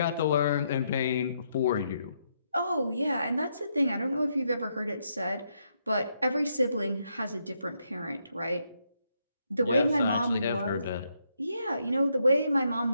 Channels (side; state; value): both; inverted; correlation -0.78